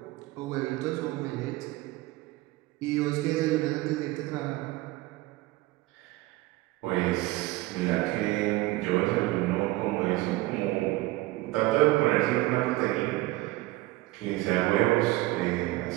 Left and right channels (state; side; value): quieter; left; 19.2 dB